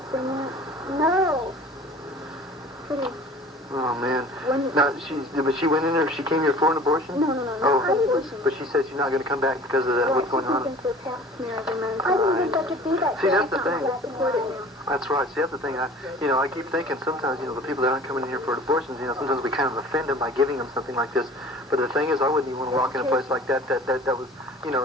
Pretty... Oh, man. Now, but she went in there, she came here for an abortion? No, for an abortion. But she said she's not going to come back because of that, what's going on? I didn't think I could do that. See, that's the thing. That's right. See, that's the thing. I keep thinking sometimes, the people that aren't coming in here for abortions, sometimes we kind of offend them by giving them something like this. But the thing is, I wouldn't even want to walk in a place like that was,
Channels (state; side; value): normal; both; correlation 0.45